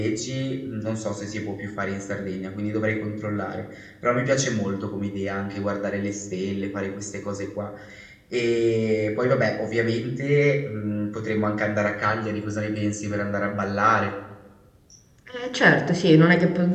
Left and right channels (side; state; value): both; identical; correlation 1.00